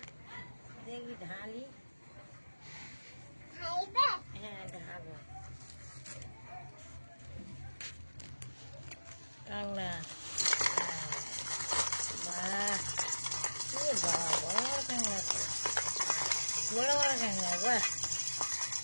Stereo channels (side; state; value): both; inverted; correlation -1.00